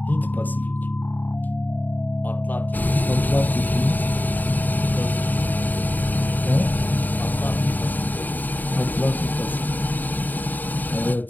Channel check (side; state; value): right; late; 0.087 ms